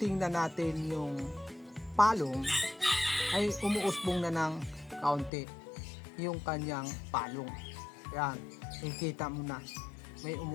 natin yung palong, ay umuusbong na ng kaunti yung kanyang palong. Yan, ikita mo na may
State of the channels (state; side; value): drops out; right; at 5.3 s